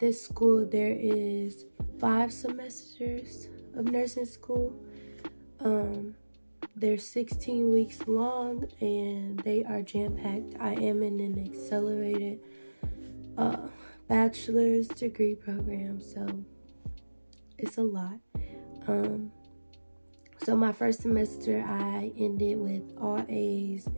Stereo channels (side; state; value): both; inverted; correlation -1.00